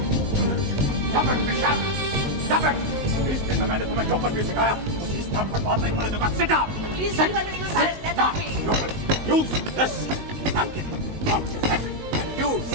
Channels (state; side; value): late; left; 19 ms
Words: Stop it, Michelle! Stop it! इस दिन में मैंने तुम्हें जो कुछ भी सिखाया उसे इस बात पर बात नहीं करने दूंगा। Sit down! Please leave her, Mr. Sahai. Let her be. You will use this napkin on your head and use